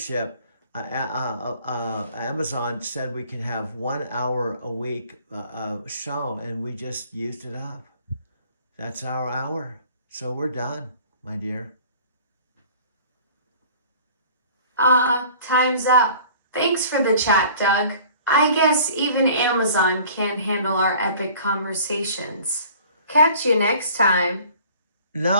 Amazon said we can have 1 hour a week show, and we just used it up. That's our hour. So we're done, my dear. Time's up. Thanks for the chat, Doug. I guess even Amazon can't handle our epic conversations. Catch you next time.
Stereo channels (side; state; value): both; inverted; correlation -0.49